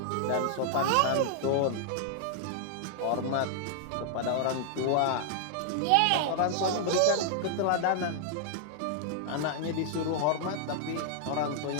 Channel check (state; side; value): different; both; correlation -0.01